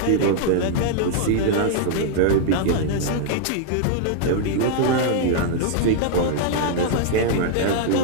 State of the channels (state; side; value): different; both; correlation -0.01